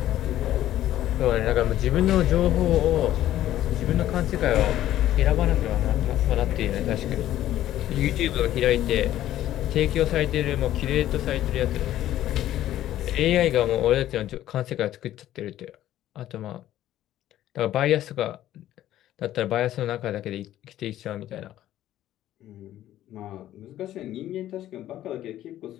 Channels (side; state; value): right; quieter; 13.1 dB